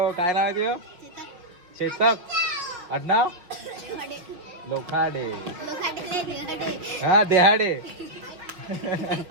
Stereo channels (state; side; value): late; left; 5.3 ms